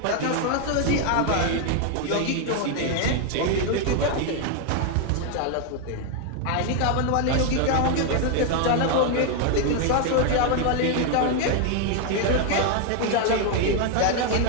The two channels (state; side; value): different; both; correlation 0.01